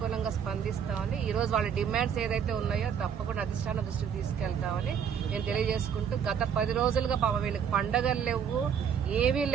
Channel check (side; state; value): left; quieter; 7.8 dB